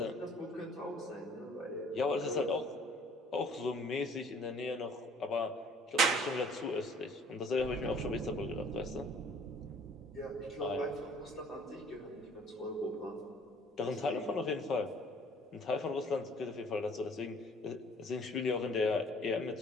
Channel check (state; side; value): normal; both; correlation 0.55